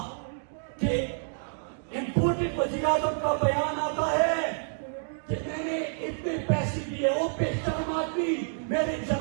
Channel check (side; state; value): left; silent; digital silence